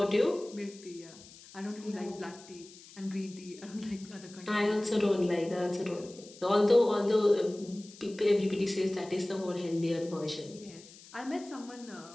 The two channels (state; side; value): noise; left; hiss, 20 dB below the sound